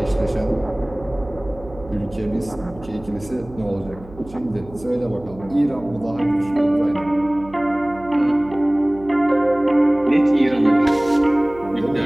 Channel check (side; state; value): right; noise; hum, 19 dB below the sound